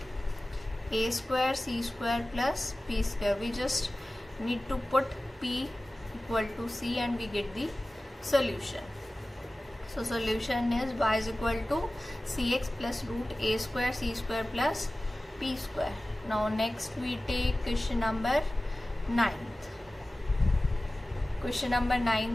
a square c square plus p square. We just need to put p equal to c and we get the solution. So solution is y is equal to cx plus root a square c square plus p square. Now next we take question number 9th. Question number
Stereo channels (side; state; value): both; normal; correlation 0.97